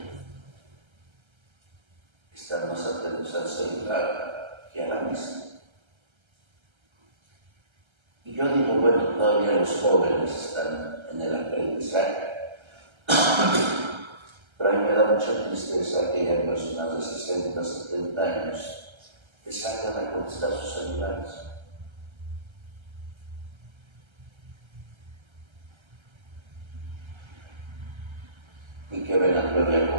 que están más atentos al celular que a la misa. Y yo digo, bueno, todavía los jóvenes están en el aprendizaje. Pero a mí me da mucha tristeza que haya personas de 60, 70 años que salgan a contestar sus celulares. Y que vengan todavía a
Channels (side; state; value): left; late; 1.3 ms